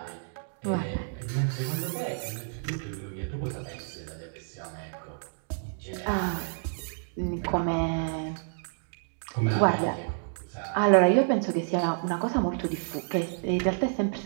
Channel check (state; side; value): silent; left; digital silence